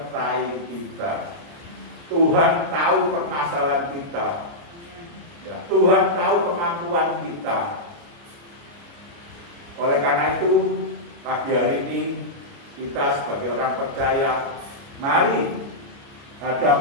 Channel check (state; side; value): late; left; 29 ms